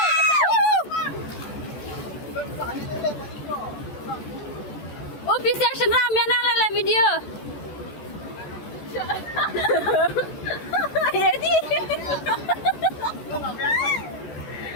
Oh, bisa senam ya nang lala video. Jadi.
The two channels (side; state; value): right; late; 14 ms